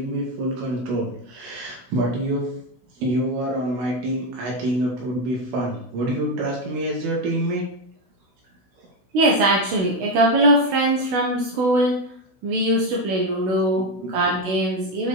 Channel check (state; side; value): late; left; 16 ms